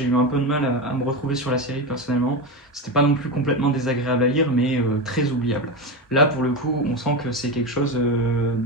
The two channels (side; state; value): both; normal; correlation 0.17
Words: eu un peu de mal à me retrouver sur la série personnellement. C'était pas non plus complètement désagréable à lire, mais très oubliable. Là, pour le coup, on sent que c'est quelque chose